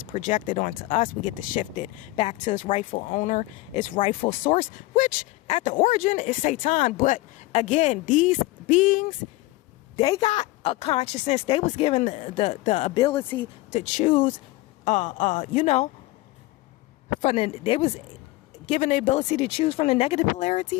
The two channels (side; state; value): right; quieter; 19.7 dB